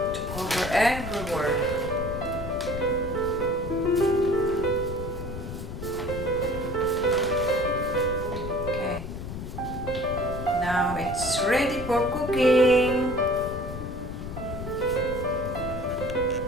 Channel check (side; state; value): left; noise; rumble, 7 dB below the sound